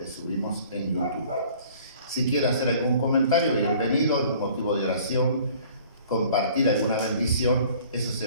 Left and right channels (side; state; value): both; inverted; correlation -0.52